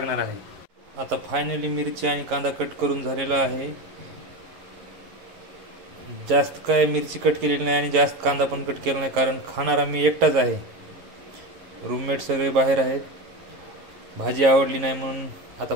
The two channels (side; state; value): left; late; 11 ms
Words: आहे. आता फायनली मिरची आणि कांदा कट करून झालेला आहे. जास्त काय मिरची कट केलेली नाही आणि जास्त कांदा पण कट केला नाही, कारण खाणारा मी एकटाच आहे. रूममेट सगळे बाहेर आहेत. भाजी आवडली नाही म्हणून आता